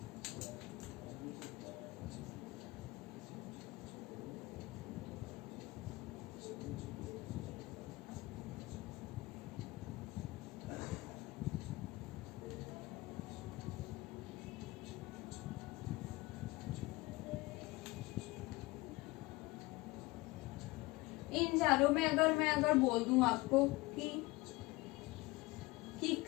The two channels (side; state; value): right; quieter; 21.7 dB